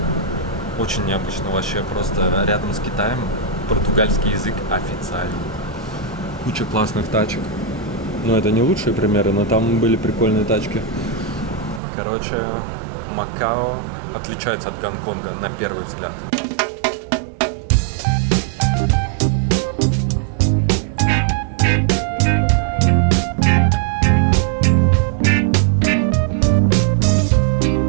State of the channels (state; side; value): drops out; left; at 11.8 s